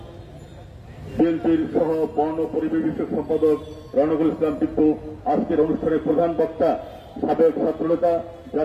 বিএনপির সহ বন ও পরিবেশ বিষয়ক সম্পাদক রনকুল ইসলাম টিপ্পু, আজকের অনুষ্ঠানের প্রধান বক্তা সাবেক ছাত্রনেতা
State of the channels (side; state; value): both; identical; correlation 1.00